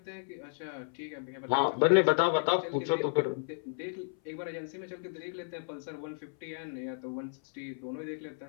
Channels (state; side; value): silent; right; 56 dB below the other